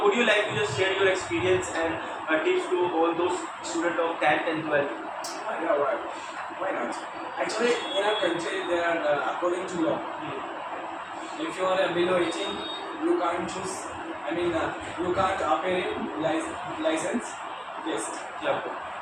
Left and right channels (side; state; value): both; identical; correlation 1.00